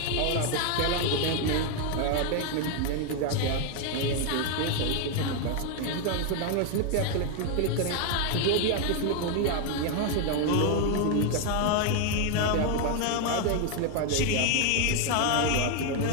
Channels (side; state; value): both; different; correlation 0.01